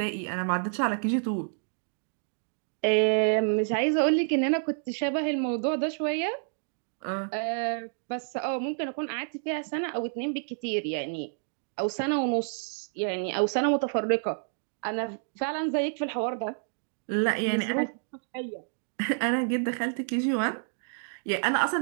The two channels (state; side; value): silent; left; digital silence